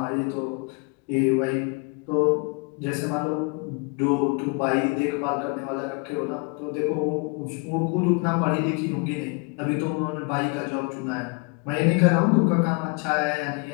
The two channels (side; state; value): right; quieter; 32.1 dB